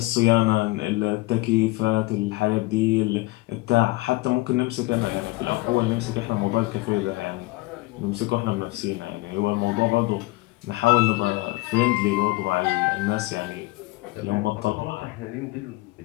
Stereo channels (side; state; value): right; quieter; 21.2 dB